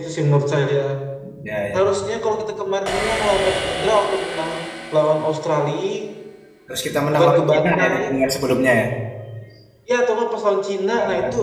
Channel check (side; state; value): both; identical; correlation 1.00